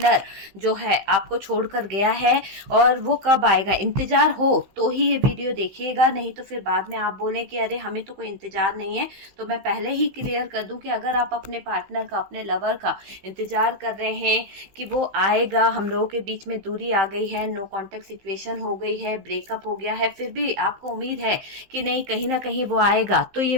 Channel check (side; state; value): left; late; 16 ms